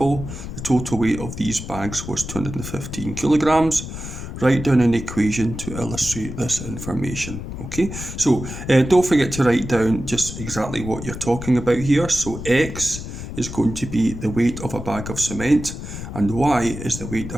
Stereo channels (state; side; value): noise; left; rumble, 9 dB below the sound